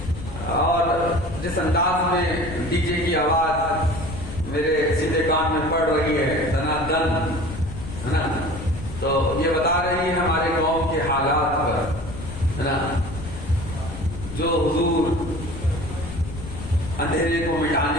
اور جس انداز میں ڈی جے کی آواز میرے سیدھے کان میں پڑ رہی ہے دنا دن، ہے نا، تو یہ بتا رہی ہے ہمارے قوم کے حالات پر، ہے نا. جو حضور اندھیرے کو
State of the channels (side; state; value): left; noise; rumble, 10 dB below the sound